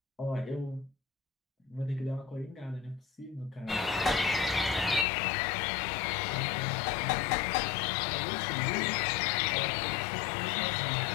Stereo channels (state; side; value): drops out; right; at 5.1 s